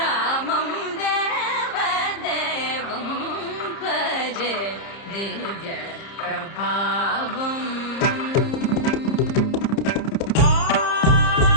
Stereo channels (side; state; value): right; late; 30 ms